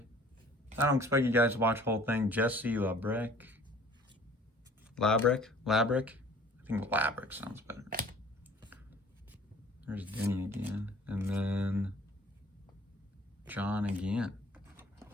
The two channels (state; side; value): normal; both; correlation 0.52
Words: I don't expect you guys to watch the whole thing. Jesse Labrick. I think Labrick sounds better. There's Denny again. And then John again.